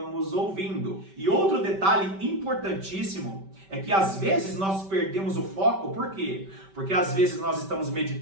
ouvindo. E outro detalhe importantíssimo é que às vezes nós perdemos o foco. Por quê? Porque às vezes nós estamos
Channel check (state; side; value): late; left; 5.2 ms